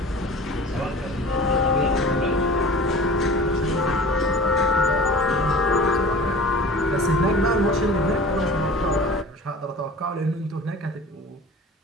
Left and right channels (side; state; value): both; normal; correlation 0.40